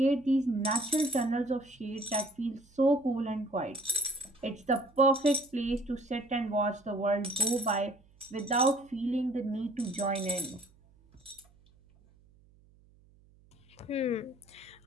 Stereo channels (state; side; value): noise; right; hum, 29 dB below the sound